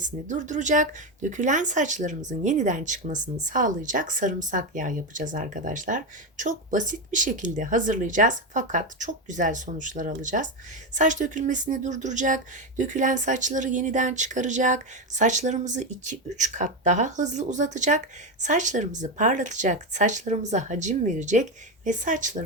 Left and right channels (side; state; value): both; normal; correlation 0.12